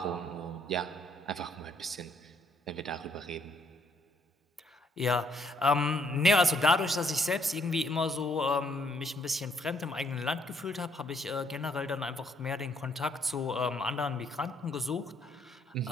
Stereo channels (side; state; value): both; normal; correlation 0.69